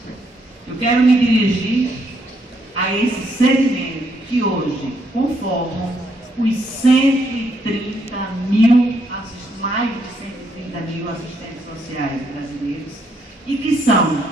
Eu quero me dirigir a esse segmento que hoje conformam os 130 mil, mais de 130 mil assistentes sociais brasileiros e que são,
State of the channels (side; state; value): both; normal; correlation 0.74